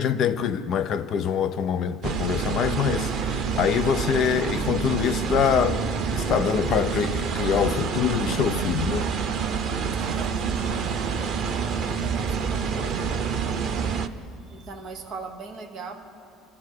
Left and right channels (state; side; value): normal; both; correlation 0.46